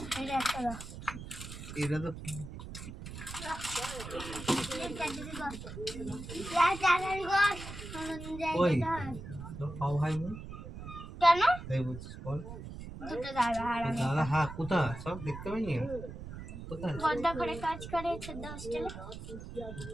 এটা 1 টাকা। এটা তো ওই তো পাও ভাই কেন? তাই বলছিস বল। দুটো দাদা আর আমি। দাদা হ্যাঁ কোথায় সব দেখতে পাইনি কোথায় বড্ডা করে কাজ করে ছোট হোস্টেলে।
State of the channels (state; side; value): noise; right; rumble, 10 dB below the sound